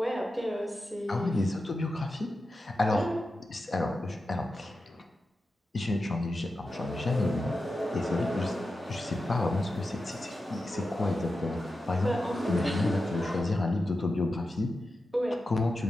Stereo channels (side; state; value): both; normal; correlation 0.91